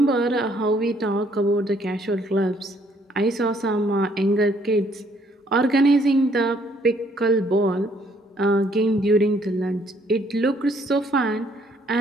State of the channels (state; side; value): normal; both; correlation 0.65